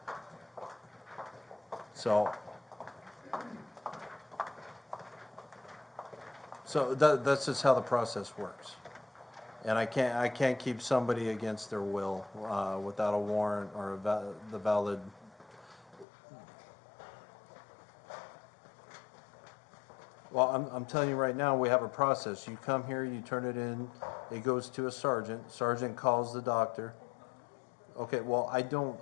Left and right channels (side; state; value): right; drops out; at 16.1 s